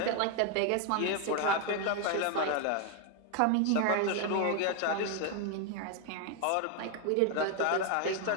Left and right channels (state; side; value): different; both; correlation 0.01